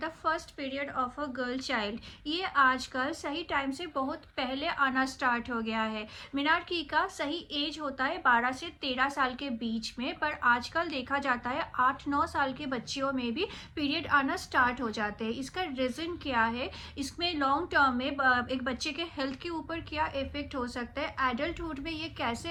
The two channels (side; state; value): both; identical; correlation 1.00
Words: first period of a girl child, ये आजकल सही टाइम से बहुत पहले आना स्टार्ट हो गया है। मिनार्की का सही एज होता है 12 से 13 साल के बीच में, पर आजकल देखा जाता है 8-9 साल के बच्चियों में भी पीरियड आना स्टार्ट हो जाते हैं। इसका रीज़न क्या है? इसमें लॉन्ग टर्म में एक बच्चे के हेल्थ के ऊपर क्या इफेक्ट हो सकता है, एडल्टहुड में ये कैसे